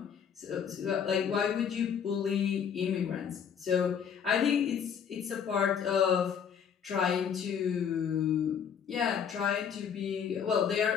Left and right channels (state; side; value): quieter; right; 7.6 dB